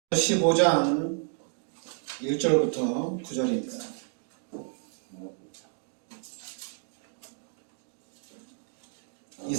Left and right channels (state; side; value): silent; left; 57 dB below the other